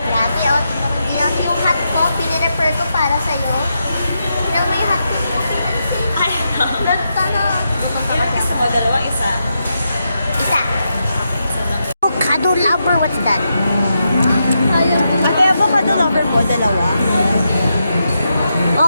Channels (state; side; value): inverted; both; correlation -0.84